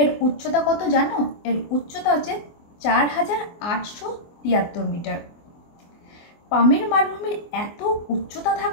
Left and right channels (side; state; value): right; late; 24 ms